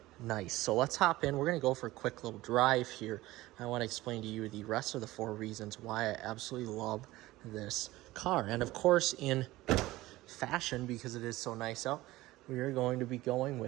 nice. So let's hop in. We're going to go for a quick little drive here. I want to explain to you the rest of the 4 reasons why I absolutely love this car. And of course, in fashion, because it is so nice out, we are going to be going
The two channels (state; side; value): quieter; left; 17.9 dB